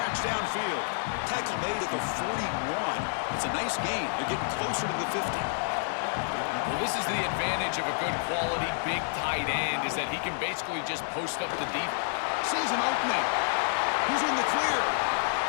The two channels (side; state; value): right; silent; digital silence